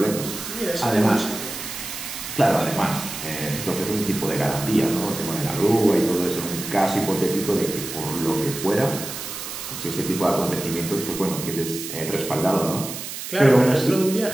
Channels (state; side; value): noise; right; hiss, 8 dB below the sound